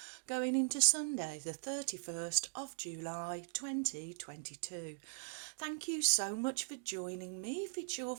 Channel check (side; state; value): left; silent; digital silence